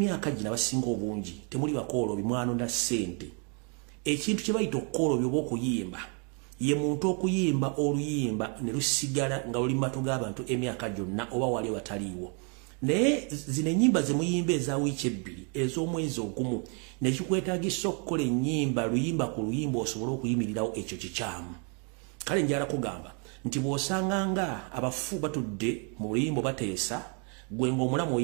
gino abasinga obungi temuli bakooloobi mwanonda ssente ekintu kye bayita okukooloobi oba okuyimba ye muntu okuyimba oluyimba ne lusigala nga luli matu g'abantu emyaka gyonna oba wali wataliiwo naye zino ennyimba ze muyimba eza wiiki ebbiri ez'omwezi ogumu nekikwetaagisa okukola ennyimba luyimba ku luyimba osobole okuyimirirawo ekyo kikyamu kale njala kugamba nti bw'osanga nga abafu batudde mu luyimba bateesa gwe ng'omulamu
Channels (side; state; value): left; quieter; 37.7 dB